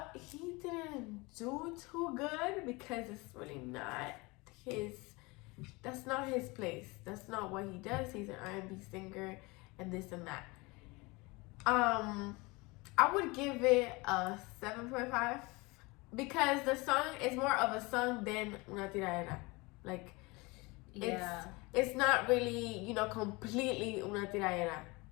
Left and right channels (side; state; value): right; quieter; 25.0 dB